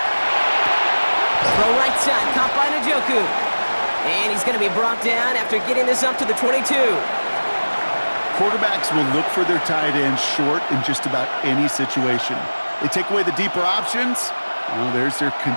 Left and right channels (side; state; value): both; inverted; correlation -1.00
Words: Throw right side, caught by Njoku. And he's going to be brought down after getting this up to the 22. Quarterbacks will look for their tight end short in just about any situation. They take away the deeper options. Well, there's their